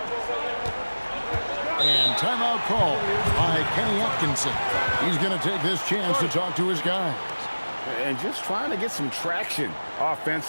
And timeout call by Kenny Atkinson. He's going to take this chance to talk to his guys. And just trying to get some traction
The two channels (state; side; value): inverted; both; correlation -1.00